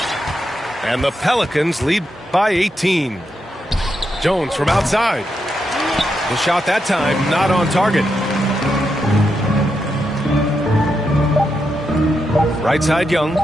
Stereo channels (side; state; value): both; normal; correlation 0.84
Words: And the Pelicans lead by 18. Jones from outside. The shot that time not on target. Right side Young.